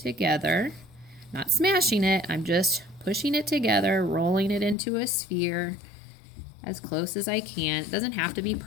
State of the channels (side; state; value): right; drops out; at 4.8 s